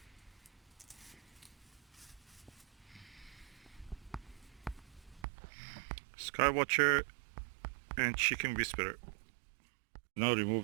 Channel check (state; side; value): drops out; left; at 5.2 s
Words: SkyWatcher and Chicken Whisperer. Now